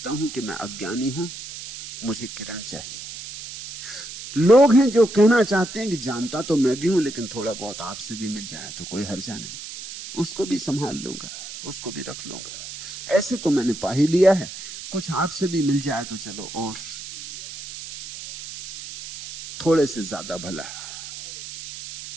हूं कि मैं अज्ञानी हूं, मुझे किरण चाहिए। लोग हैं जो कहना चाहते हैं कि जानता तो मैं भी हूं, लेकिन थोड़ा बहुत आपसे भी मिल जाए तो कोई हर्जा नहीं, उसको भी संभाल लूंगा, उसको भी रख लूंगा। ऐसे तो मैंने पा ही लिया है, कुछ आपसे भी मिल जाए तो चलो और थोड़े से ज्यादा भला।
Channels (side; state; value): right; noise; hiss, 11 dB below the sound